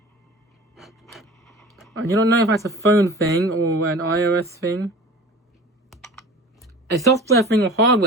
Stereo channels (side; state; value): both; normal; correlation 0.39